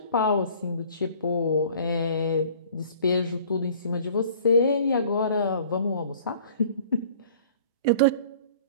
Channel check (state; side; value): inverted; both; correlation -0.51